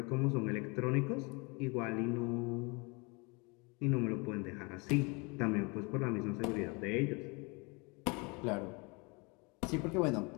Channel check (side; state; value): right; quieter; 29.4 dB